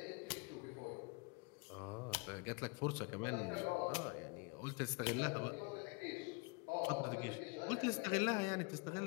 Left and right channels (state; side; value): quieter; right; 29.2 dB